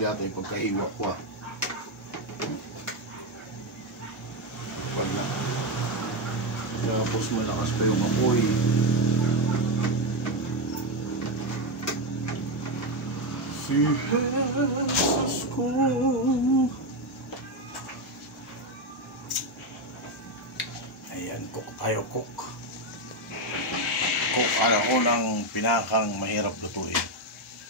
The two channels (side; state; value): both; normal; correlation 0.09